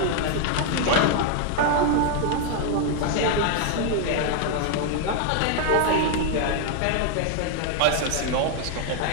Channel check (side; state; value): both; different; correlation 0.00